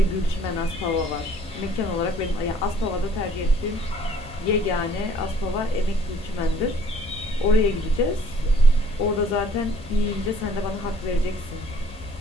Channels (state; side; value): normal; both; correlation 0.58